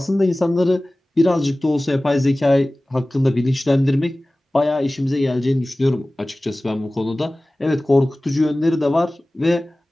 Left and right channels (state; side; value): normal; both; correlation 0.98